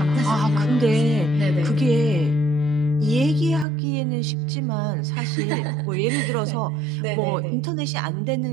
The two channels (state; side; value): drops out; left; at 3.7 s